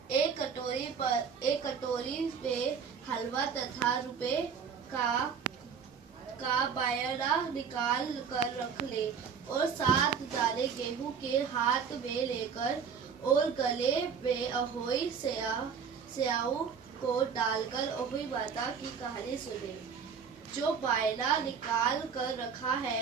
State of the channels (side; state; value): left; quieter; 6.6 dB